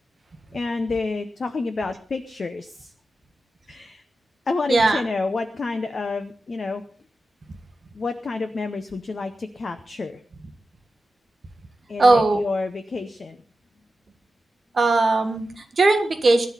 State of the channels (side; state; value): both; normal; correlation 0.92